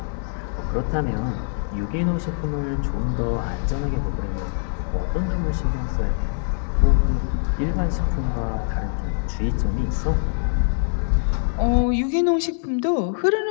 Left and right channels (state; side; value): silent; right; 63 dB below the other